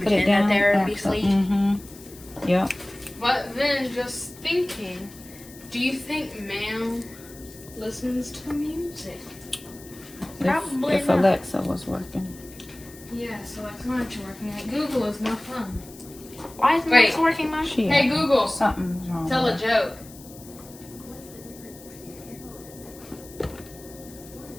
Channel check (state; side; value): noise; left; hiss, 20 dB below the sound